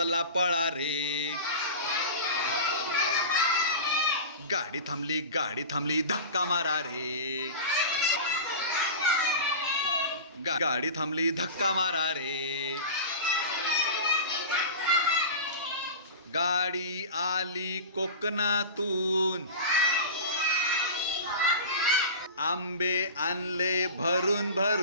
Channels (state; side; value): inverted; both; correlation -0.31